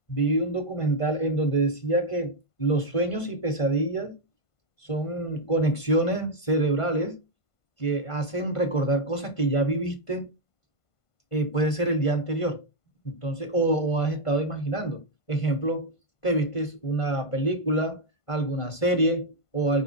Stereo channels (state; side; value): late; right; 1.5 ms